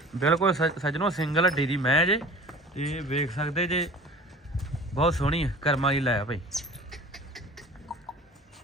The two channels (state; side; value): normal; both; correlation 0.43